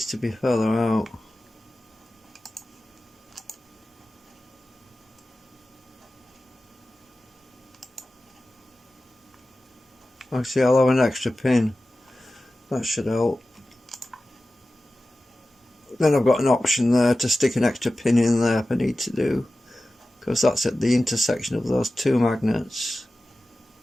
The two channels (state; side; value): normal; both; correlation 0.95